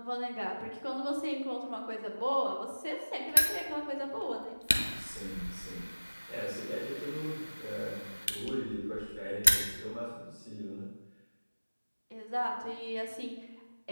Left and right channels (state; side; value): inverted; both; correlation -1.00